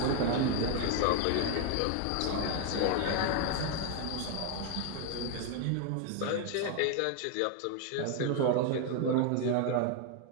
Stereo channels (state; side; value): different; both; correlation 0.01